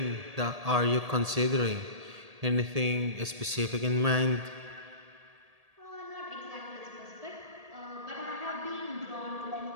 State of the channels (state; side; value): late; left; 1.7 ms